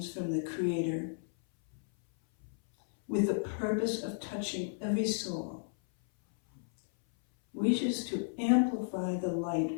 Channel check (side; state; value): right; silent; 56 dB below the other